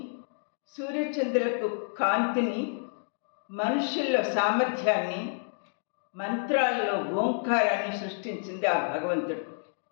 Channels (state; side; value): silent; right; digital silence